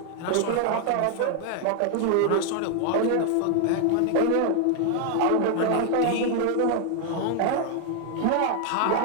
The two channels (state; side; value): different; both; correlation 0.00